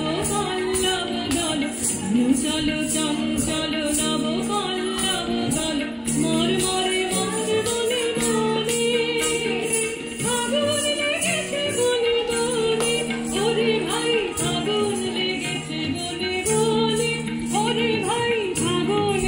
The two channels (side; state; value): both; identical; correlation 1.00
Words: পল্লব দল, চলো চঞ্চল নব পল্লব দল, মর মরে মর বনে বনে, আগুন লেগেছে বনে বনে, ওরে ভাই আগুন লেগেছে বনে বনে, ওরে ভাই আগুন